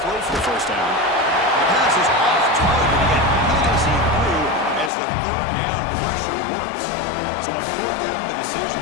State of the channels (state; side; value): drops out; right; at 4.9 s